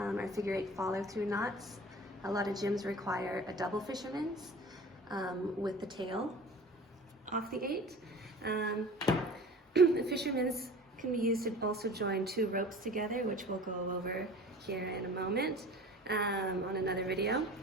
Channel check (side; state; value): both; normal; correlation 0.41